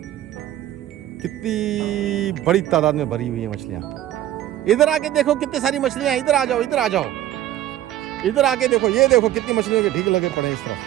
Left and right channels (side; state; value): left; quieter; 13.1 dB